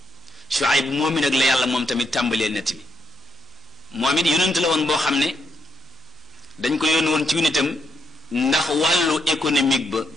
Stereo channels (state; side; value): normal; both; correlation 0.78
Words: moom mi nag la yàlla moom tamit tàmbalee nett bi moom it yonent la woon boo xam ne dañ ko yónni woon ci nitam ndax wàllu économique ba